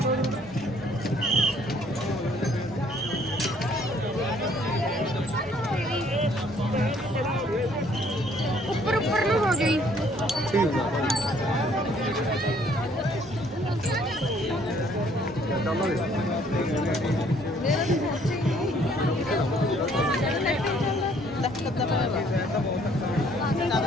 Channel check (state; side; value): normal; both; correlation 0.61